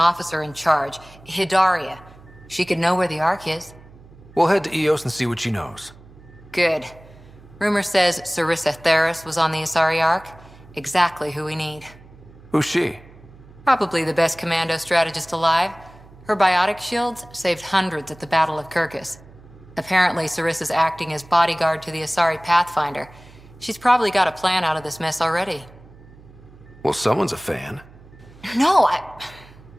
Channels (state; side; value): noise; right; hum, 22 dB below the sound